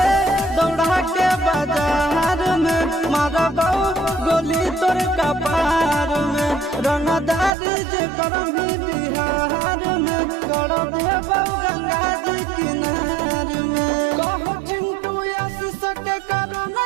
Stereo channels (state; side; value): drops out; left; at 7.5 s